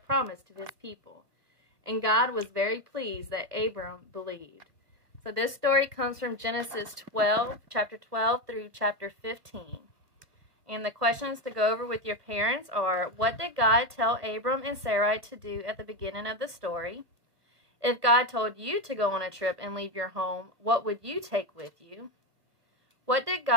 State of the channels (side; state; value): left; late; 1.3 ms